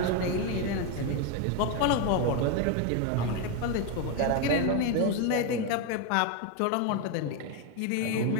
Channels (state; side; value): different; both; correlation 0.02